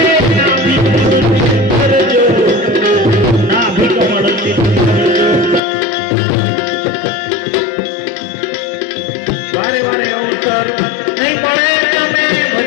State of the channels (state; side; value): drops out; right; at 5.6 s